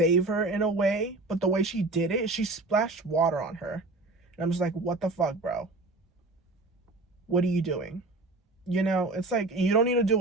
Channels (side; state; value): left; quieter; 3.0 dB